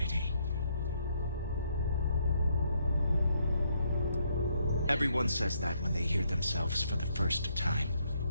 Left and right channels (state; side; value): inverted; both; correlation -0.73